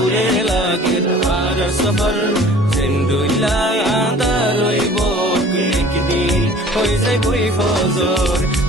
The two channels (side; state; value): both; normal; correlation 0.48